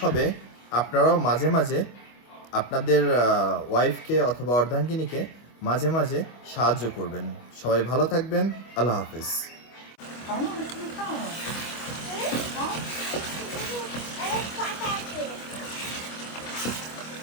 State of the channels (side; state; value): right; late; 25 ms